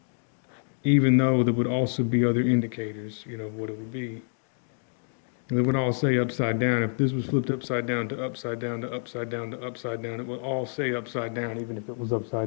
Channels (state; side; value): silent; right; 60 dB below the other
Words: Even though there would also be other indicators, what it would be. They would all say upside down. If this was flipped upside down to upside down to upside down to upside down, it would all say upside down, even if it was